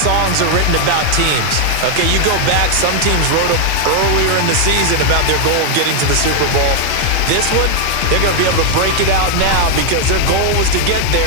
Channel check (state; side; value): different; both; correlation 0.00